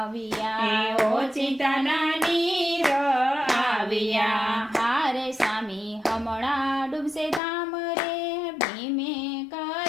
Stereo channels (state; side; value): drops out; right; at 7.4 s